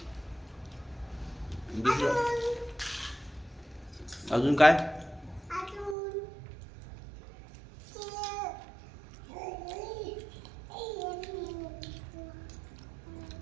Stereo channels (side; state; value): left; drops out; at 6.0 s